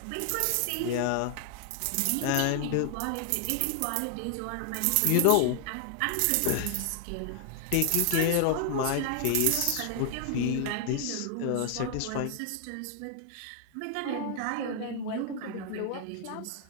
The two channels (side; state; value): both; different; correlation 0.00